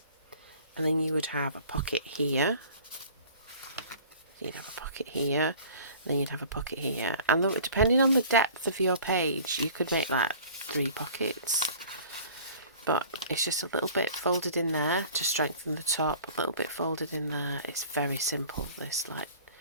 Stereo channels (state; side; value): inverted; both; correlation -0.46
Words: and then you would have a pocket here. You'd have a pocket here, then you'd have a pocket here, and depending on the depth of your page, you could make like 3 pockets. But it's just a little bit folded in there to strengthen the top, a little bit folded in there. It's very simple, this like